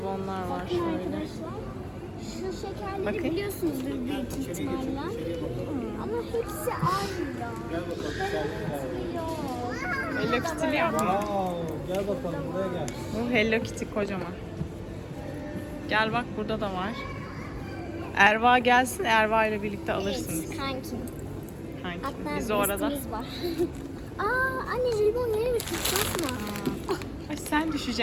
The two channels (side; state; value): both; identical; correlation 1.00